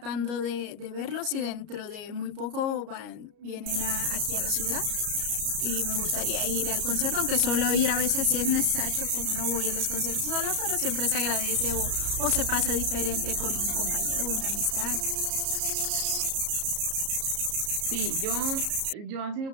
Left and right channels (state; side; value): late; left; 34 ms